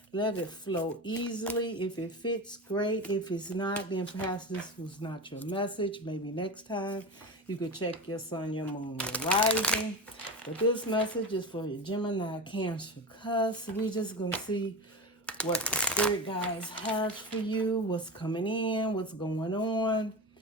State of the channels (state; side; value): normal; both; correlation 0.25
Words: Let it flow easily. If it fits, great. If it's not, then perhaps this was not your message. Maybe next time you could check your sun, your moon, your rising. But this message is for your Gemini, Cancer, Cusp. We're just going to see what the spirit guides has for you, what's coming in, what's going on,